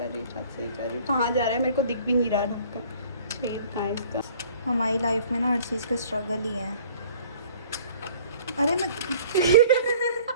रही कहाँ जा रहा है? मेरे को दिख भी नहीं रहा ढक्कन, छेद कहाँ है इसका? हमारी लाइफ में ना हर चीज़ का स्ट्रगल ही है। अरे मैं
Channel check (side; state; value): both; inverted; correlation -0.52